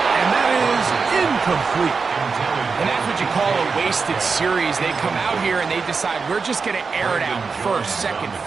And that is incomplete. And that's what you call a wasted series. They come out here and they decide we're just going to air it out 1st, 2nd,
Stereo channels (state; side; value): quieter; left; 4.9 dB